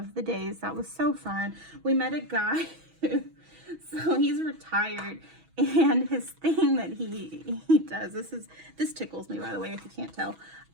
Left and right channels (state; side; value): late; left; 6.2 ms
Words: the days. That was so fun. We met a guy, so he's retired. And his thing that he does, this tickles me, by the way, if you can't tell.